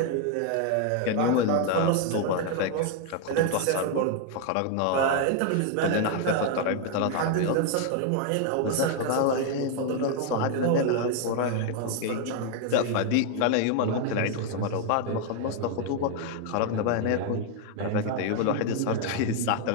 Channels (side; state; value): both; different; correlation 0.00